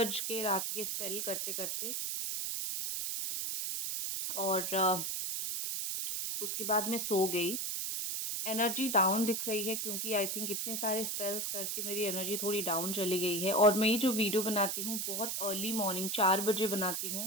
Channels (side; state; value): right; noise; hiss, 1 dB below the sound